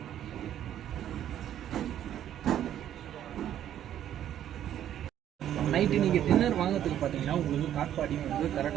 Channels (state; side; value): quieter; left; 11.0 dB